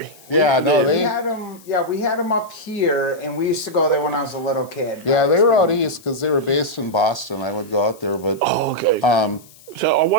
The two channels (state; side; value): noise; left; hiss, 24 dB below the sound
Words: Yeah, no, We had them. Yeah, we had them up here, and we used to go there when I was a little kid. Yeah, they were out east because they were based in Boston. I would go out there, but. Oh, okay. So I